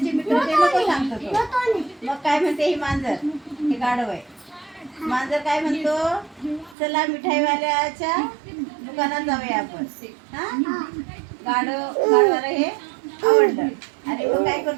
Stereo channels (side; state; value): left; drops out; at 6.8 s